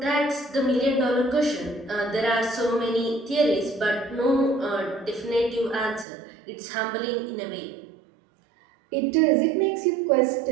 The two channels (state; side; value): drops out; left; at 6.1 s